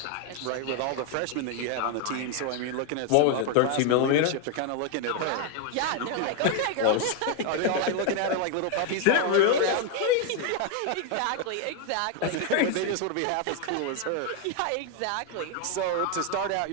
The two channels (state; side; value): different; both; correlation 0.01